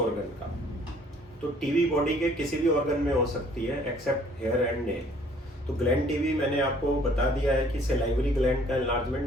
का। तो टीबी बॉडी के किसी भी ऑर्गन में हो सकती है एक्सेप्ट हेयर एंड नेल। तो ग्लैंड टीबी मैंने आपको बता दिया है कि सलाइवरी ग्लैंड का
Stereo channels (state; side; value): normal; both; correlation 0.58